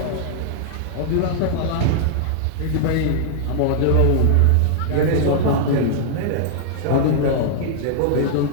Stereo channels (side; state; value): both; different; correlation -0.01